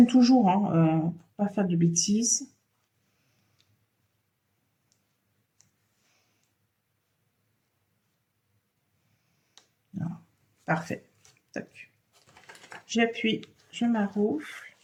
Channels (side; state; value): both; identical; correlation 1.00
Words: toujours, hein, pour pas faire de bêtises. Voilà. Parfait. J'appuie, je maroufle.